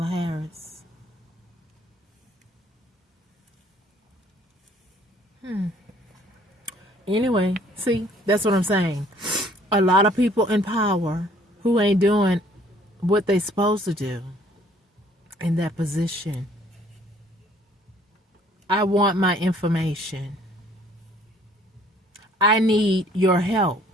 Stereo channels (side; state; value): both; normal; correlation 0.59